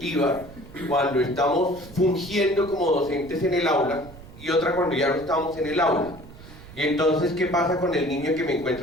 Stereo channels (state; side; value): noise; right; rumble, 18 dB below the sound